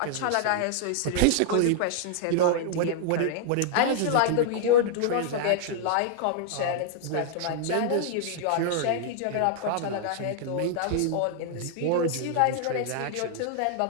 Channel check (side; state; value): both; different; correlation -0.01